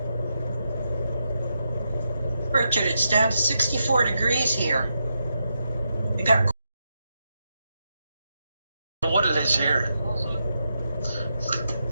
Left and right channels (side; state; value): both; inverted; correlation -0.84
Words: Richard, it's down to 64 degrees here. We got What it is here.